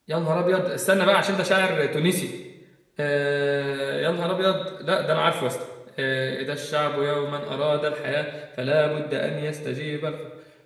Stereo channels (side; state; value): both; identical; correlation 1.00